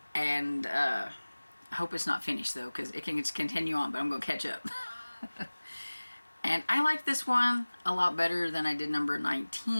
And I hope it's not finished, though, because it can just continue on, but I'm going to catch up. And I like this one a lot better than I did number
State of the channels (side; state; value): both; inverted; correlation -1.00